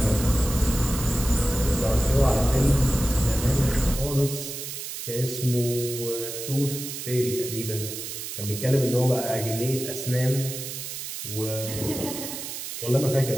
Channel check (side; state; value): right; noise; hiss, 7 dB below the sound